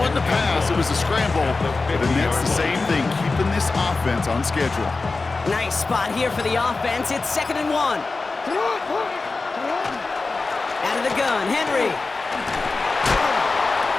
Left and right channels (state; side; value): quieter; right; 3.8 dB